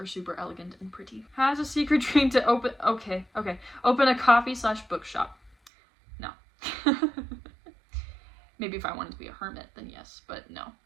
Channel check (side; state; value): left; drops out; at 5.7 s